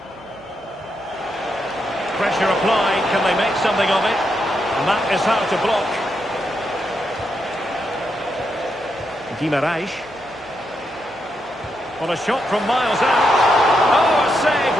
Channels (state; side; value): noise; left; hum, 30 dB below the sound